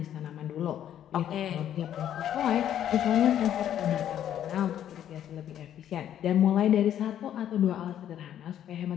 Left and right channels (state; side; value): quieter; right; 10.6 dB